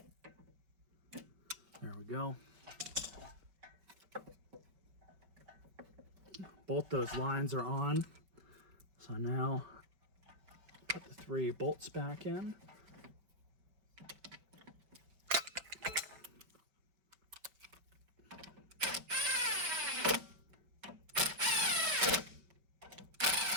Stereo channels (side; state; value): left; late; 5.2 ms